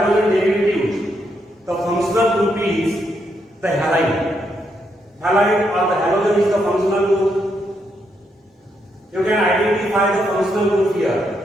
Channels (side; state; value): both; normal; correlation 0.78